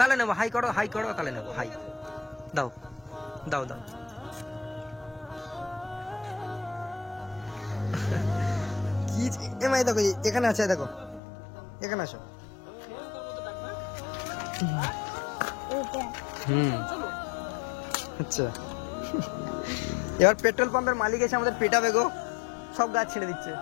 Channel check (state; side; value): drops out; right; at 11.2 s